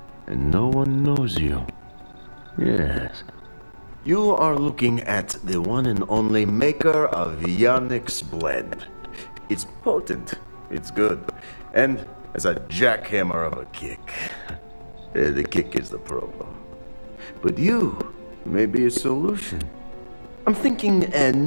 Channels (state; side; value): inverted; both; correlation -1.00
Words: And no one knows you. Yes. You are looking at the one and only maker of Yannick's blend. It's potent. It's good. And as a jackhammer of a kick. The kick is the problem. But you may be a solution. I'm thinking a